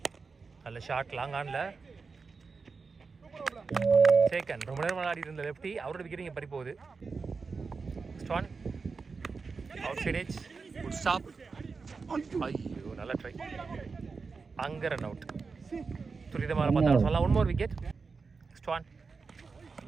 நல்ல ஷாட், லாங் ஆன்ல சேக்கன். ரொம்ப நேரம் விளையாடி இருந்த லெஃப்டி, அவரோட விக்கெட் இங்கே பறி போகுது. ஸ்டான் outside edge, good stop. ஐயோ நல்ல ட்ரை, அங்கே ரன் அவுட். துரிதமாக பார்த்தா சொல்லலாம். 1 more விக்கெட். ஸ்டான்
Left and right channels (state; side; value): quieter; left; 4.7 dB